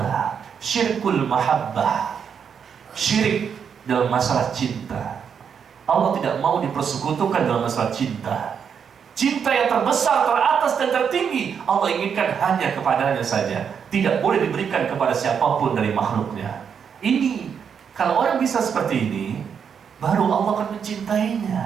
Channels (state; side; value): quieter; left; 7.2 dB